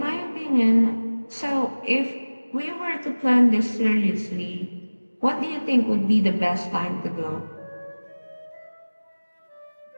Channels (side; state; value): both; inverted; correlation -1.00